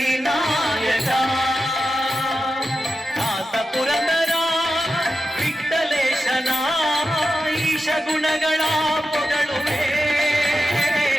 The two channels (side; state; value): both; normal; correlation 0.91